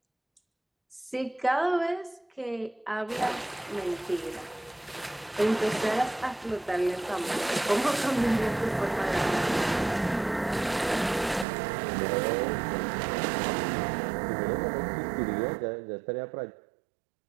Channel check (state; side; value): drops out; left; at 11.5 s